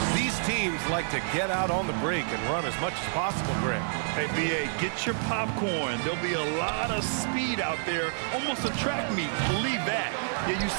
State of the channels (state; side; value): silent; left; digital silence